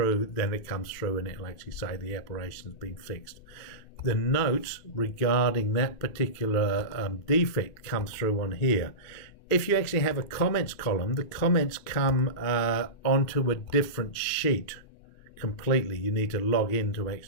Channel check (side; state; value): right; late; 2.5 ms